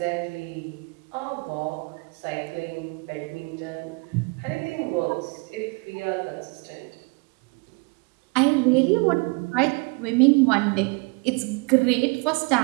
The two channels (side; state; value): left; quieter; 30.6 dB